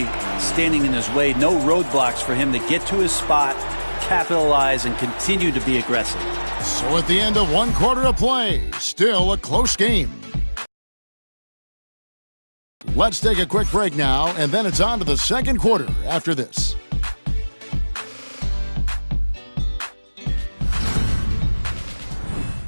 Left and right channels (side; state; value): both; inverted; correlation -1.00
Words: standing in his way. No roadblocks for him to get to his spot capitalize and continue to be aggressive. So at the end of 1 quarter of play, still a close game. Let's take a quick break now, and then it's on to the second quarter after this.